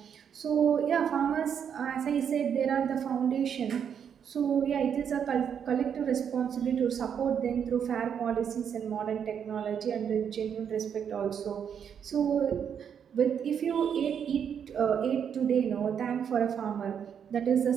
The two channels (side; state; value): left; quieter; 7.9 dB